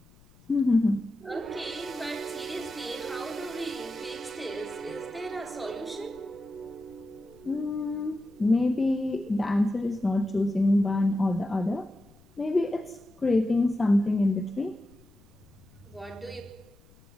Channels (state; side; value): noise; left; rumble, 28 dB below the sound